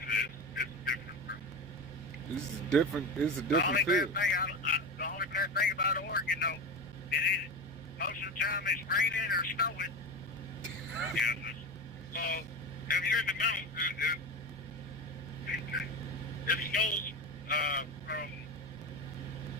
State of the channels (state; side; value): normal; both; correlation 0.23